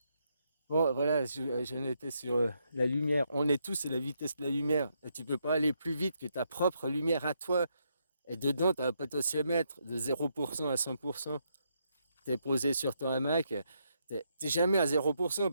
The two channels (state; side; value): inverted; both; correlation -0.78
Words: Bon, voilà, j'en étais sur la lumière. On est tous à la vitesse de la lumière. Et tu peux pas aller plus vite que ta propre lumière à toi. Et dedans, tu as un potentiomètre de 0% à 100%. Tu es posé sur ton hamac. T'es jamais à 0%